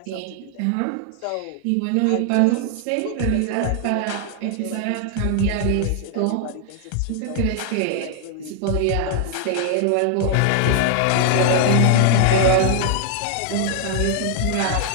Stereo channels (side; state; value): both; different; correlation 0.00